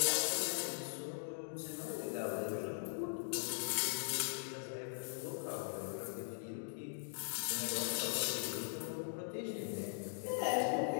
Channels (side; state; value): right; silent; digital silence